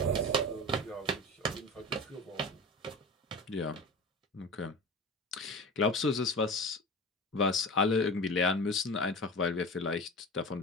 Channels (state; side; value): normal; both; correlation 0.32